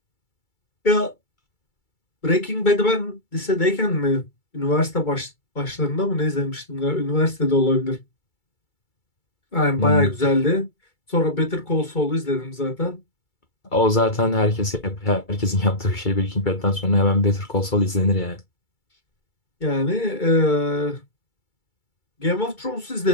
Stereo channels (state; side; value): late; right; 2.3 ms